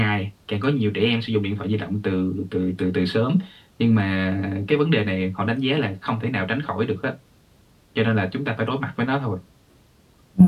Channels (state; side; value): identical; both; correlation 1.00